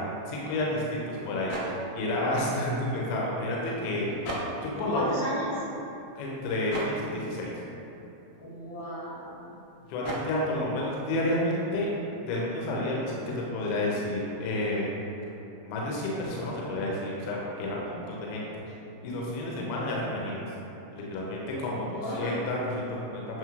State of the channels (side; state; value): right; late; 34 ms